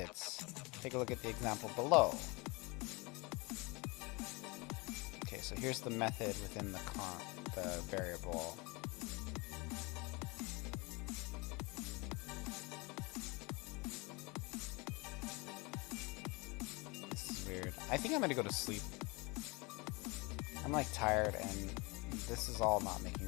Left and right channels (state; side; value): quieter; right; 26.7 dB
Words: Take a look at the example below. Okay, so here's the method within the variable. This is weird. I think I'm gonna go to sleep. I'm like tired and this is all not